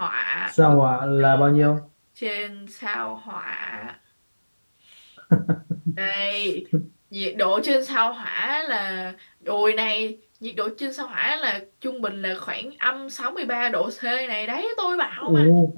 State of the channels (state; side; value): inverted; both; correlation -1.00